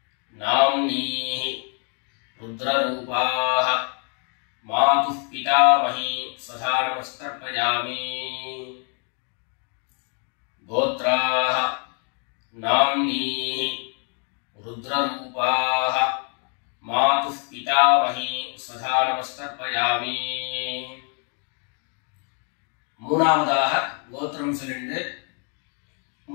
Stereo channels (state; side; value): quieter; right; 39.9 dB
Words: नाम्नीः रुद्ररूपाः मातुः पितामही स्वधा नमस्कर्पयामि गोत्राः नाम्नीः रुद्ररूपाः मातुः पितामही स्वधा नमस्कर्पयामि மூணாவதாக கோத்திரம் சொல்லிட்டு